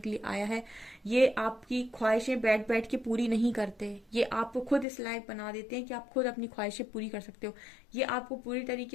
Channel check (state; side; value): drops out; right; at 4.9 s